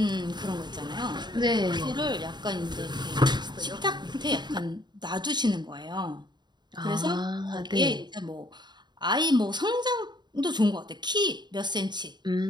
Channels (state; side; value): late; left; 0.21 ms